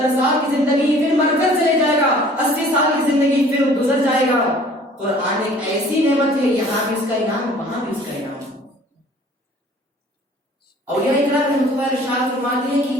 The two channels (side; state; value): both; normal; correlation 0.51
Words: سال کی زندگی پھر مر کر چلے جائے گا، 80 سال کی زندگی پھر گزر جائے گا۔ قرآن ایک ایسی نعمت ہے، یہاں بھی اس کا انعام وہاں بھی اس کا انعام۔ اولیاء اکرام رحمۃ اللہ ارشاد فرماتے ہیں کہ